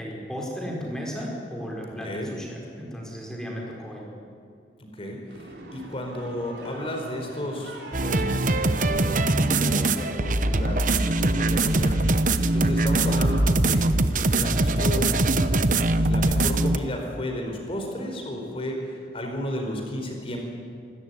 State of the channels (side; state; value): both; normal; correlation 0.68